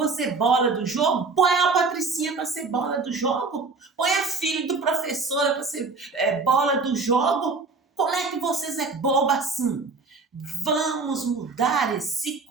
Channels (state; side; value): quieter; left; 4.2 dB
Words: bola do jogo? Põe a Patricinha para ser bola do jogo. Põe a filha do professor para ser bola do jogo. Como é que vocês é boba assim? Vamos mudar esse